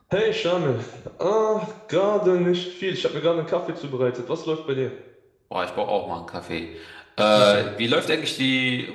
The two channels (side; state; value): both; identical; correlation 1.00